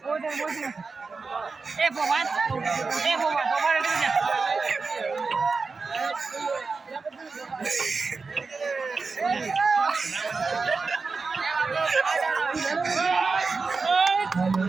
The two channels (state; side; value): quieter; left; 4.4 dB